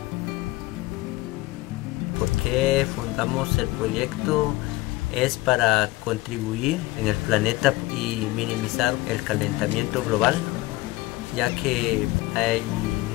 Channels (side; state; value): right; quieter; 19.5 dB